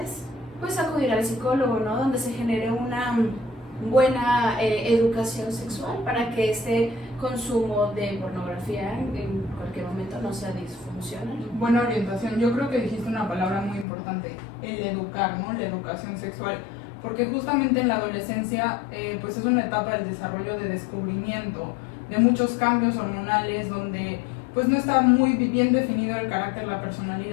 pues acudir al psicólogo, ¿no? Donde se genere una buena educación sexual para que este consumo de pornografía en cualquier momento no sea disfuncional. Buena orientación. Yo creo que dijiste una palabra muy importante, el educar, ¿no? La educación sexual. Porque justamente en la adolescencia pues es una etapa del desarrollo de descubrimiento, de muchos cambios hormonales, donde pues no está muy bien definido el carácter, la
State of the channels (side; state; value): right; drops out; at 13.9 s